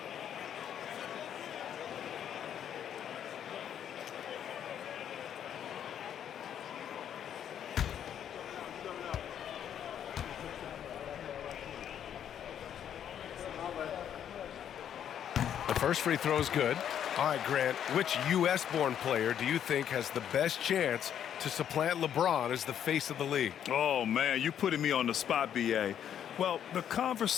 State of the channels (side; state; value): right; quieter; 9.5 dB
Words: First free throw is good. All right, Grant, which U.S.-born player do you think has the best chance to supplant LeBron as the face of the league? Oh, man, you're putting me on the spot, B.A. Well, the